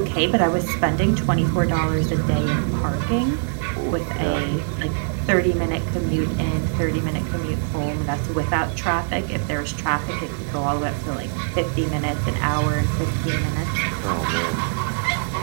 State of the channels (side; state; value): left; silent; digital silence